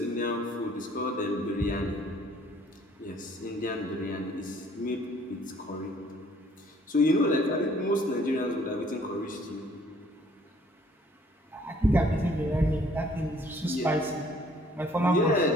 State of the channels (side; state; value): both; normal; correlation 0.59